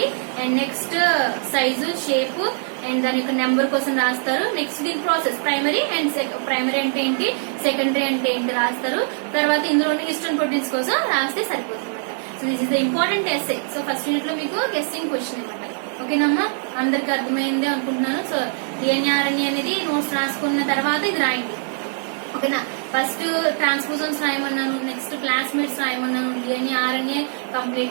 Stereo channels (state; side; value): silent; left; 64 dB below the other